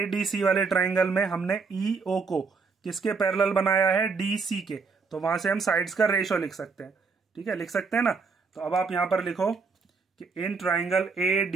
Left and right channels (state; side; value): quieter; left; 4.8 dB